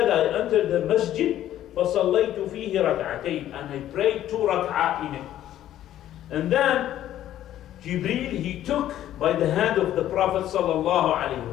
I entered the masjid, فصليت فيه ركعتين, and I prayed 2 rak'ah in it. And then Jibreel he took by the hand of the Prophet sallallahu alaihi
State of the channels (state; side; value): quieter; right; 12.3 dB